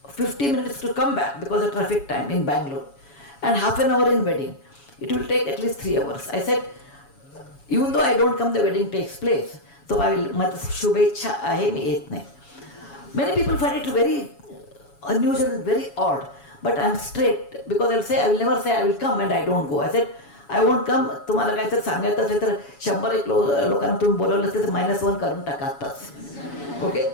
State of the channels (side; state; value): right; late; 7.1 ms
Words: 50 minutes to come back because of traffic time in Bangalore. And half an hour in wedding. It will take at least 3 hours. I said, even though I don't come, the wedding takes place. So I will, shubhecha ahe mi et nahi. Many people find it very unusual, very odd. But I am straight because I will say, I will never say I will come and I don't go. I said, I won't come. तुम्हाला काय तर सांगायचं असेल तर 100 लोकांना तुम्ही बोलवलं असेल तर -1 करून टाका आताच. Okay,